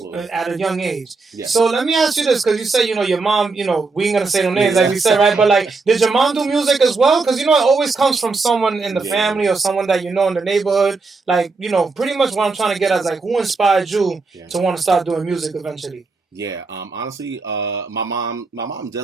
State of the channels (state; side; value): quieter; left; 4.0 dB